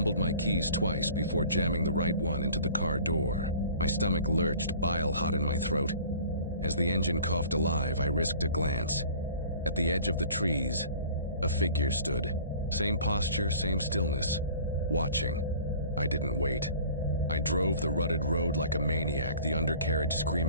my keys twice before jamming the right one into the car door. My stomach lurched, bile hot in my throat. As the engine coughed alive, I risked a glance. At the edge of the trees, a figure stood. Same posture, same stillness. Watching. I didn't wait. I drove the rutted road like a maniac, the undercarriage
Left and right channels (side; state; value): both; inverted; correlation -0.47